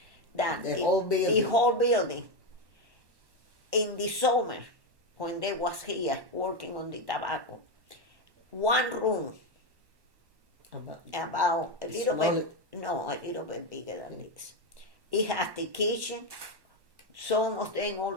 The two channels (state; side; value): late; left; 1.1 ms